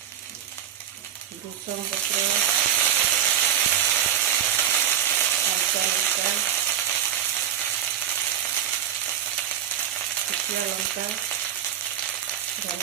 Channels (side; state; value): left; quieter; 10.0 dB